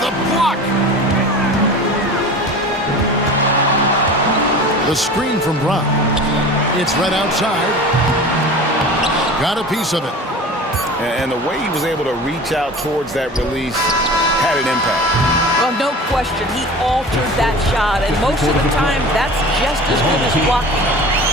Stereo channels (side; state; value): both; normal; correlation 0.37